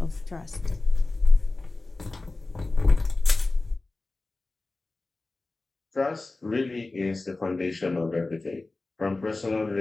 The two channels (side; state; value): right; quieter; 3.2 dB